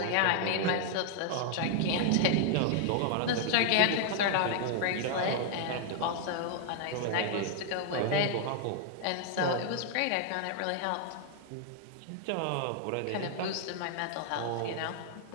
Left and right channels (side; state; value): both; different; correlation 0.00